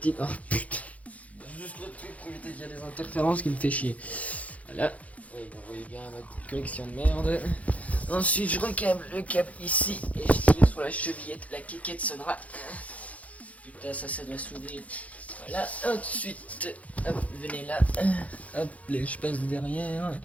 Oh putain. Juste le truc pour éviter qu'il y a des interférences qui me fait chier. Voilà. Oui, vous voyez bien ma petite collection de merde. Ensuite, je recâble le câble ici et je tire sur la chevillette. La quéquette sonnera. Putain, ça doit s'ouvrir. Voilà, ensuite, hop, venez là. Hop, je passe derrière.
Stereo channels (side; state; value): right; late; 0.068 ms